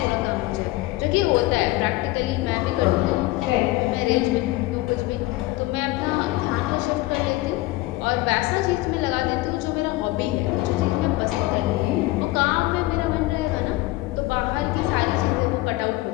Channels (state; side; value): quieter; right; 19.2 dB